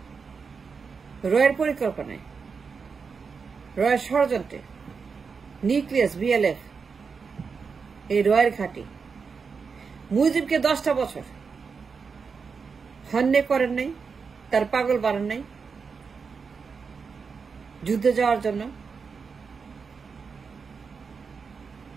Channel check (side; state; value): left; quieter; 5.4 dB